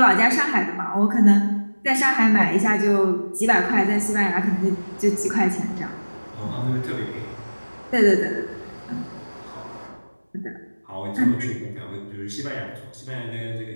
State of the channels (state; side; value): inverted; both; correlation -1.00